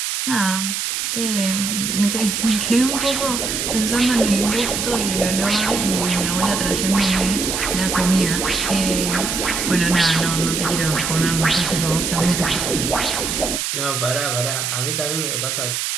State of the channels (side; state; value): right; noise; hiss, 1 dB below the sound